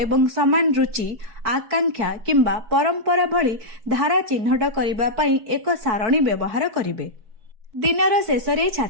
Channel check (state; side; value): late; left; 4.6 ms